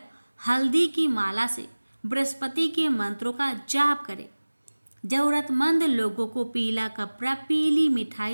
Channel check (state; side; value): inverted; both; correlation -1.00